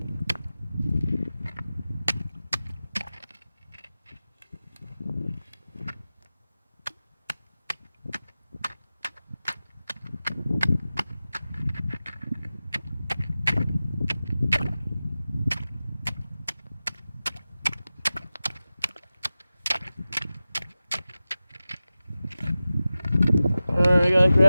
Alright, I gotta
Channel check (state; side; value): inverted; both; correlation -0.95